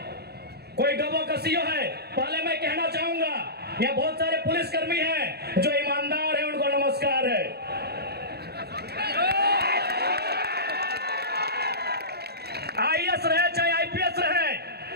कोई डोबो का सीओ है, पहले मैं कहना चाहूंगा यहाँ बहुत सारे पुलिसकर्मी हैं जो ईमानदार हैं, उनको नमस्कार है। आईएएस रहे चाहे आईपीएस रहे,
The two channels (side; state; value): left; late; 0.47 ms